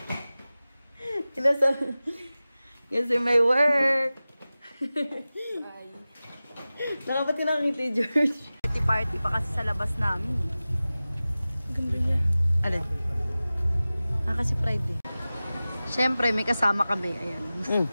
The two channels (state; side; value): inverted; both; correlation -0.96